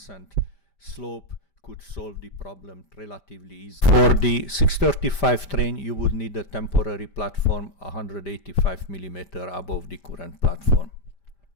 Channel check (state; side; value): late; right; 5.1 ms